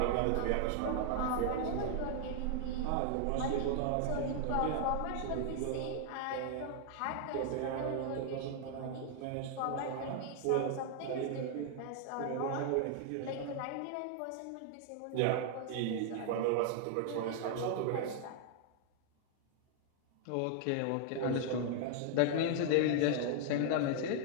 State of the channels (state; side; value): different; both; correlation 0.00